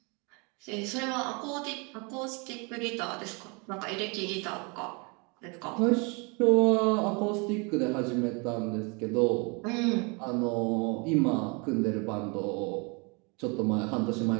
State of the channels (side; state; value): left; quieter; 31.3 dB